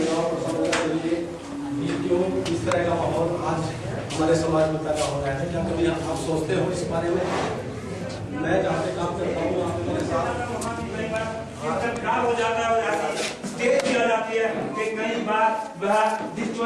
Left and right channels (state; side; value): identical; both; correlation 1.00